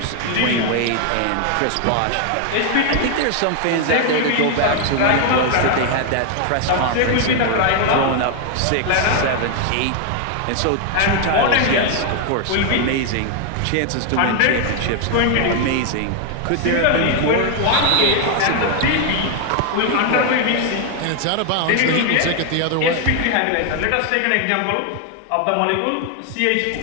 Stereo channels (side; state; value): both; different; correlation 0.00